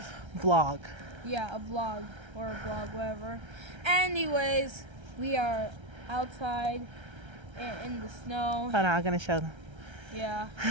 Vlog. yeah, a vlog or a blog, whatever. Anyways, we are outside in the snow. Hold on, I'm gonna show them. Yeah,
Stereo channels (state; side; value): late; left; 1.3 ms